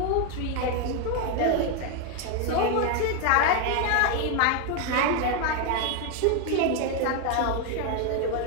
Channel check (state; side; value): different; both; correlation 0.01